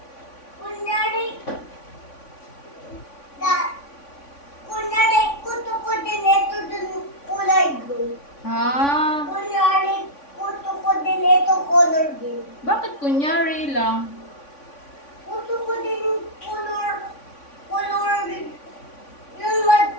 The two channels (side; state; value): right; late; 3.5 ms